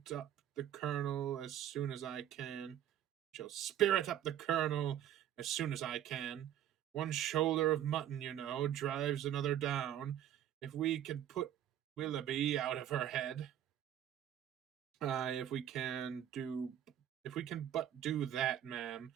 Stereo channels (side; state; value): left; quieter; 11.0 dB